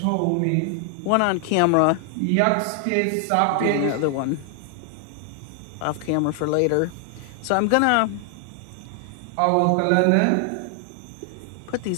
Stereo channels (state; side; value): different; both; correlation 0.00